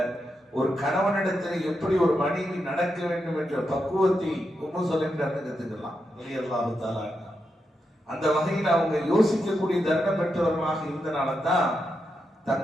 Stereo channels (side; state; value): both; normal; correlation 0.85